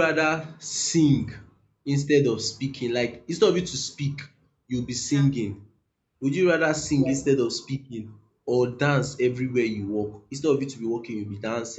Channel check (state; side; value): identical; both; correlation 1.00